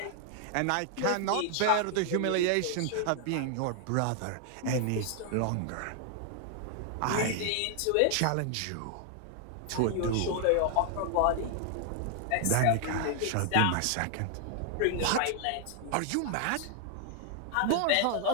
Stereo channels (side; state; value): both; different; correlation 0.00